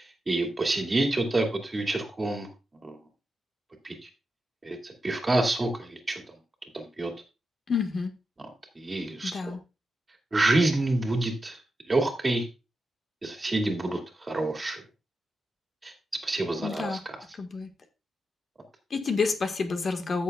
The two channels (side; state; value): both; normal; correlation 0.88